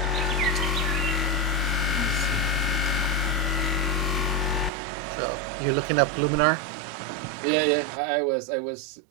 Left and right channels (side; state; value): left; drops out; at 4.7 s